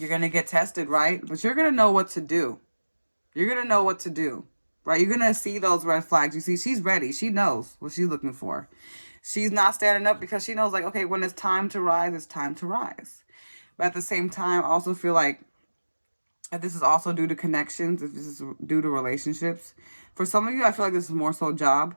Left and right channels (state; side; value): inverted; both; correlation -1.00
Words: going to get tested, right? But you're going to know what to do. You're going to know what to do, right? You're going to see those red flags. You see, she's ready. She knows what she's looking for. She's not standing up because she knows, like, okay, when it's time to rise, it's time to rise. But at the same time, I also feel like this is also due to connections. If this is due to relationships. For some of you, I feel like this is more so job.